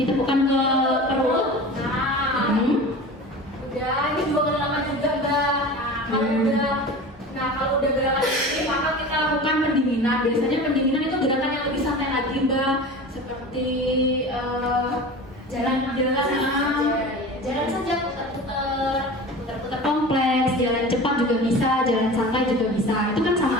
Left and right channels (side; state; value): both; normal; correlation 0.35